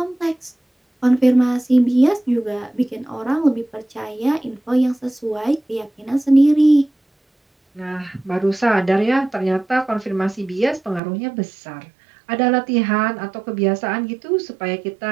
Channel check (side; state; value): left; drops out; at 11.0 s